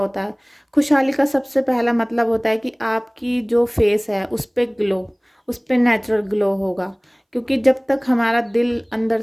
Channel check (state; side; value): identical; both; correlation 1.00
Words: है? खुशहाली का सबसे पहला मतलब होता है कि आपकी जो फेस है उस पर ग्लो, उस पर नेचुरल ग्लो होगा। क्योंकि जब तक हमारा दिल अंदर